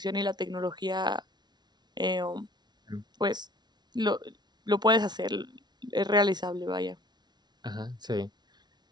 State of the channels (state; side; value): late; left; 0.20 ms